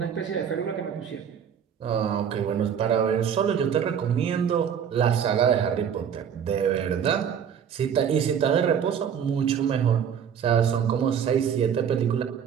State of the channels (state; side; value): quieter; left; 8.1 dB